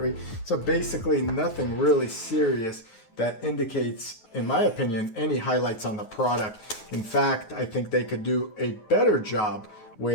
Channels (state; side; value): late; right; 9.3 ms